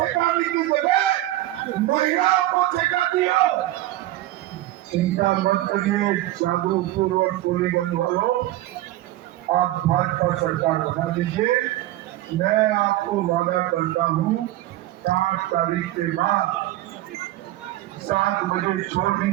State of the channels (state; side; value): quieter; left; 15.7 dB